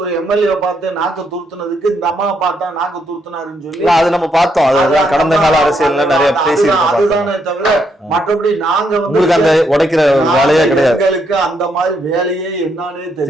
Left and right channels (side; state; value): both; normal; correlation 0.76